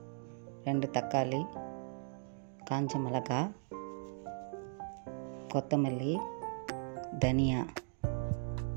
2 தக்காளி, காஞ்ச மிளகாய், கொத்தமல்லி, தனியா,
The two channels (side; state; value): left; silent; 53 dB below the other